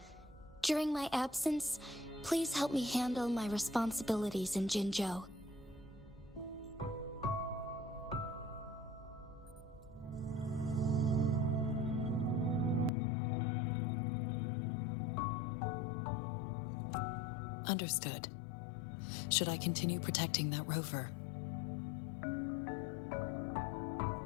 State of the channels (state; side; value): drops out; right; at 12.9 s